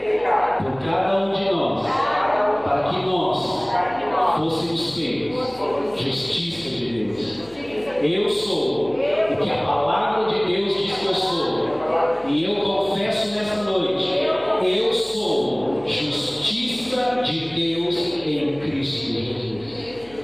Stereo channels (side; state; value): left; noise; hum, 25 dB below the sound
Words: por cada um de nós, para que nós fôssemos feitos justiça de Deus. Eu sou o que a palavra de Deus diz que eu sou, e eu confesso nessa noite, eu sou justiça de Deus em Cristo Jesus.